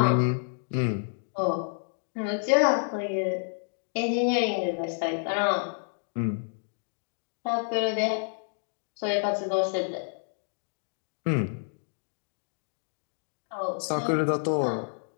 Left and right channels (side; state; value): right; silent; digital silence